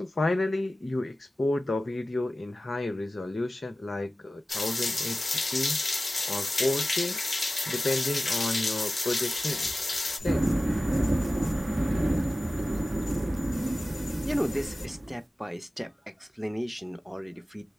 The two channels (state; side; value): normal; both; correlation 0.95